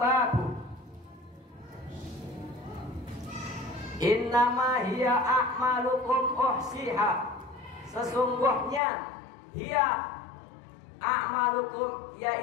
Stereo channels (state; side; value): drops out; right; at 8.8 s